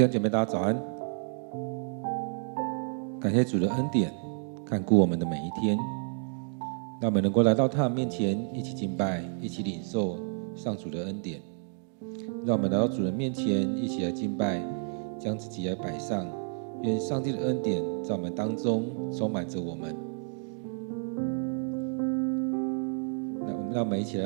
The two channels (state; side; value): silent; left; 58 dB below the other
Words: 兄姐妹，大家早安！感谢主的恩典，看顾我们的每一天，让我们能够来到他的面前，一起敬拜，一起领受上主的恩典。让我们来到主的面前，一起来敬拜，将自己来摆上。愿上帝的恩典在我们当中充满着我们。让我们一起来